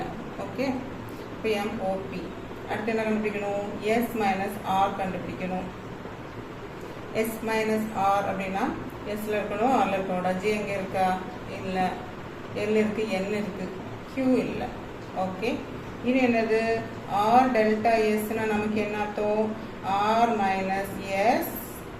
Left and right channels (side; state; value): both; identical; correlation 1.00